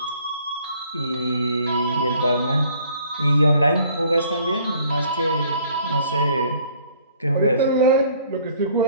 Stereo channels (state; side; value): inverted; both; correlation -0.58